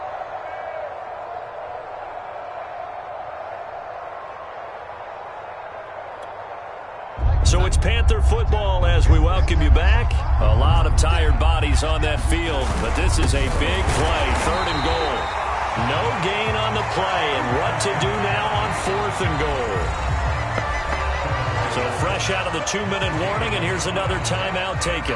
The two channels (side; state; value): both; identical; correlation 1.00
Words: So it's Panther football as we welcome you back. A lot of tired bodies on that field, but this is a big play, 3rd and goal. No gain on the play, and what to do now on 4th and goal. So fresh out of the 2-minute warning, and here's another timeout taken